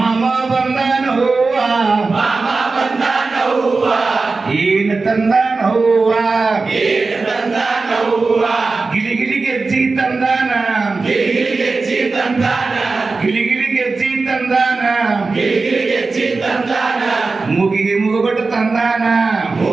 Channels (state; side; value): quieter; left; 4.0 dB